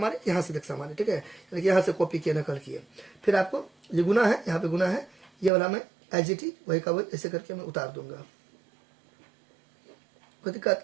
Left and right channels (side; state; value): left; drops out; at 5.5 s